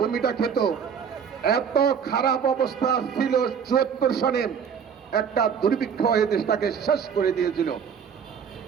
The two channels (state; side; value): quieter; left; 7.2 dB